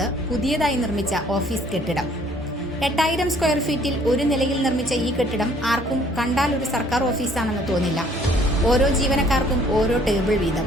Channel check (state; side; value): normal; both; correlation 0.60